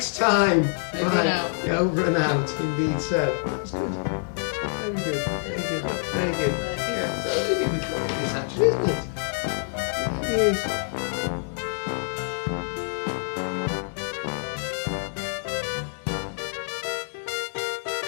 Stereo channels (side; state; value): right; silent; digital silence